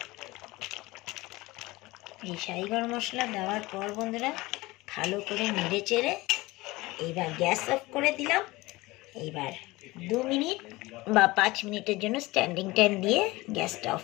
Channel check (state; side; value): quieter; right; 20.8 dB